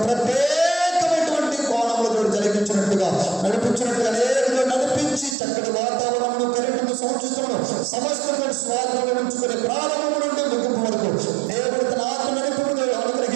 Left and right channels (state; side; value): drops out; left; at 5.4 s